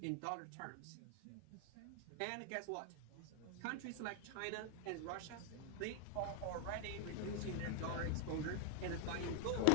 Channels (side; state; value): both; different; correlation 0.00